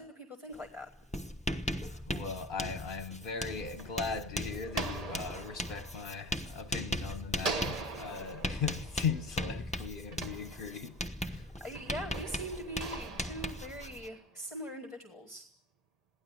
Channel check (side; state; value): both; normal; correlation 0.38